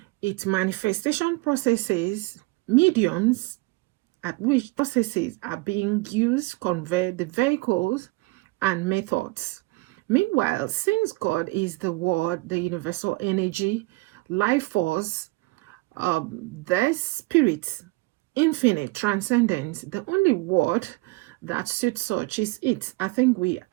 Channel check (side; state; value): left; quieter; 23.4 dB